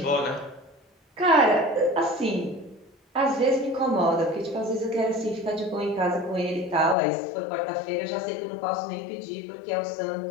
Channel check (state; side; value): drops out; right; at 7.0 s